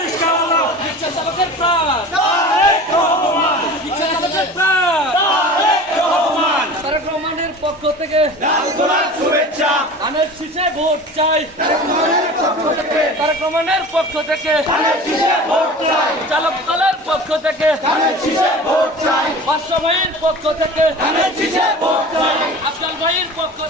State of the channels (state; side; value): normal; both; correlation 0.38